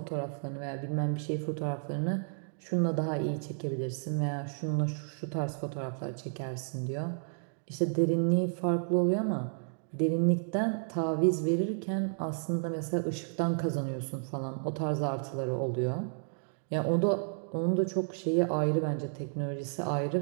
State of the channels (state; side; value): silent; left; digital silence